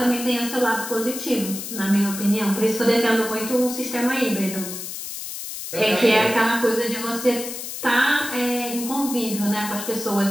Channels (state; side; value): noise; left; hiss, 8 dB below the sound